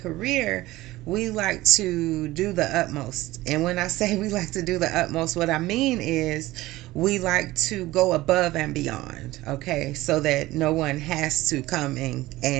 career, we like to do the utmost. And when I say we like to do the utmost, what I mean is we like to go above and beyond, okay, so that no one has to come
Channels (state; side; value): quieter; left; 17.9 dB